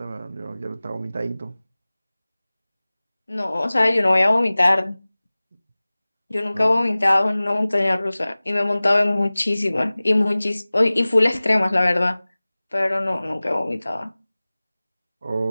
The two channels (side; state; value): both; inverted; correlation -0.99